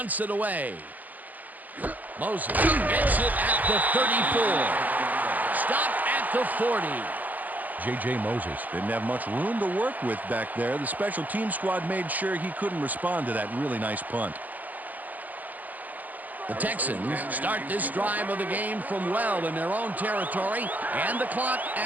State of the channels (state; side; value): late; left; 0.081 ms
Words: it away. Moses gets it at the 34. Stopped at the 40. J.J. Moses didn't have much room to work with back there. The special team squad made sure he couldn't respond to that really nice punt. The Texans start this drive of the game from well in their own territory, and the clock